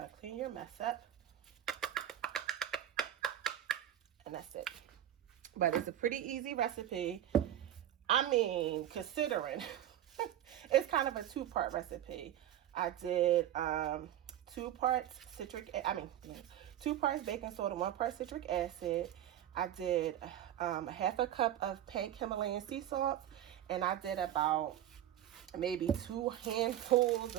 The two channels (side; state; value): left; quieter; 11.6 dB